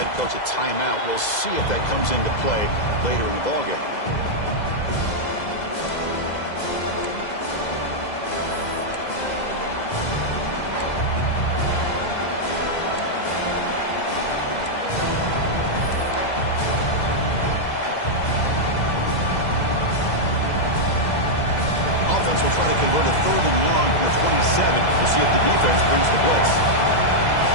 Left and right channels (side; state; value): right; late; 2.0 ms